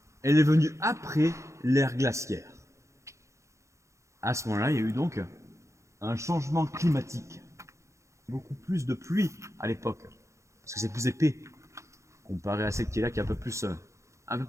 elle est venue après l'ère glaciaire. À ce moment-là, il y a eu donc un changement climatique. Beaucoup plus de pluie à l'époque, parce que c'est plus épais, comparé à celle qui est là, qui est un peu plus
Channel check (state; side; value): late; left; 0.14 ms